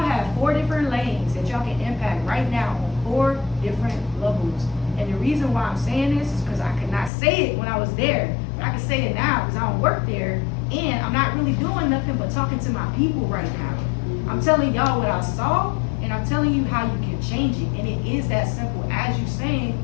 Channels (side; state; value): right; drops out; at 7.1 s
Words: 4 different lanes that y'all can impact right now on 4 different levels. And the reason why I'm saying this is because I could not say it when I was there, but I can say it now because I don't work there, and I'm not really doing nothing but talking to my people right now. I'm telling y'all what I saw, and I'm telling you how you can change it. And it is that simple as you saying,